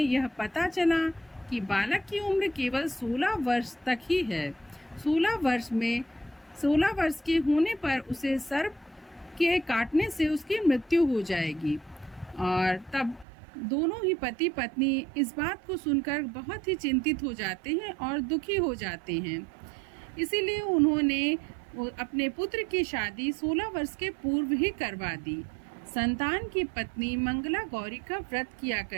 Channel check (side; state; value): left; drops out; at 13.2 s